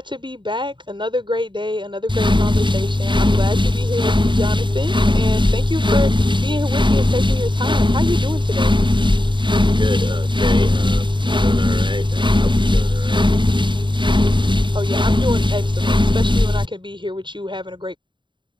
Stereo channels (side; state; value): left; late; 0.23 ms